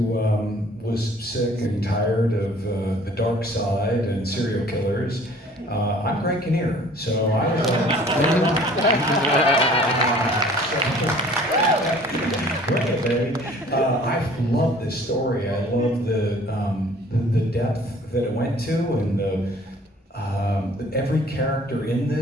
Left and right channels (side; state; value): both; normal; correlation 0.52